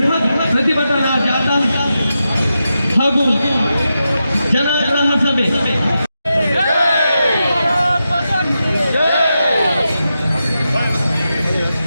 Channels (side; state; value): both; inverted; correlation -0.89